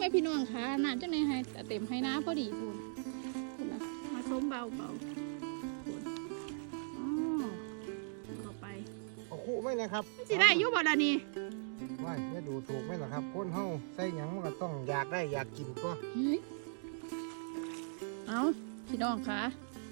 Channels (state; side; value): silent; left; digital silence